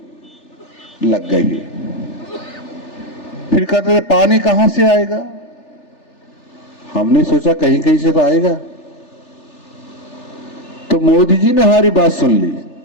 लग गई है। फिर कहते थे पानी कहां से आएगा, हमने सोचा कहीं कहीं से तो आएगा, तो मोदी जी ने हमारी बात सुन ली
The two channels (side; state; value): right; late; 3.4 ms